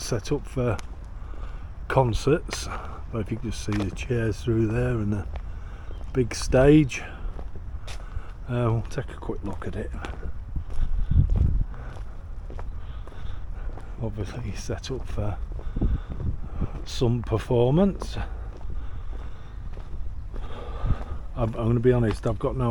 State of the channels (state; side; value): identical; both; correlation 1.00